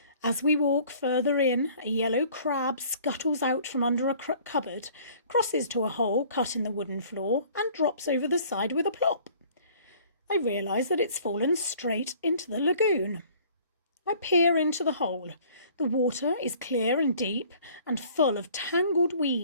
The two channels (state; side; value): inverted; both; correlation -0.53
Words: As we walk further in, a yellow crab scuttles out from under a cupboard, crosses to a hole cut in the wooden floor, and drops over the side with a plop. I realise that it's fallen straight into the lagoon. I peer into the hole. The water is clear and deep and full of tangled